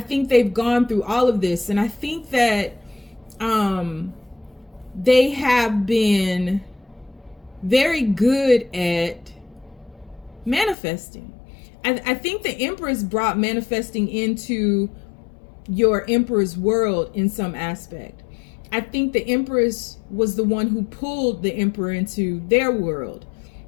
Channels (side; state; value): right; drops out; at 10.8 s